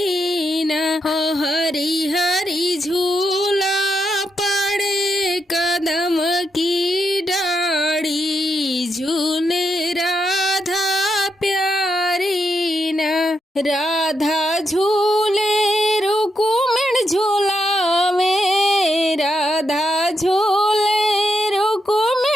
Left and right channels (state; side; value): normal; both; correlation 0.82